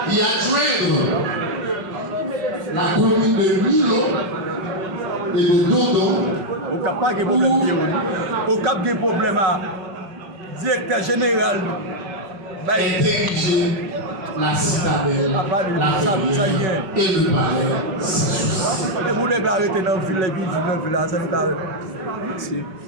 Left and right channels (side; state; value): left; late; 5.4 ms